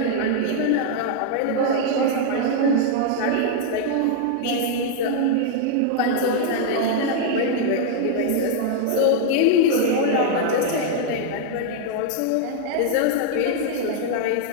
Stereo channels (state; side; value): different; both; correlation 0.00